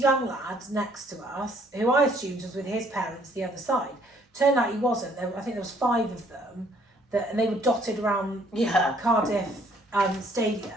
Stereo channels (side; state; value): both; normal; correlation 0.63